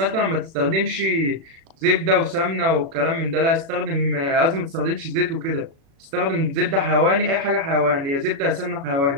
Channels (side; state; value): left; late; 36 ms